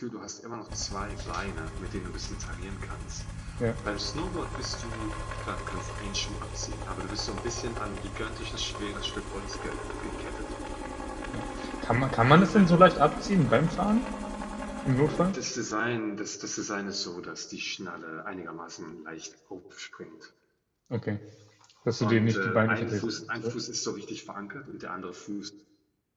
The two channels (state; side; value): identical; both; correlation 1.00